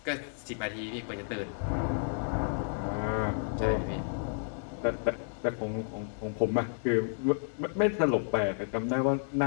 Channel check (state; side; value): silent; right; digital silence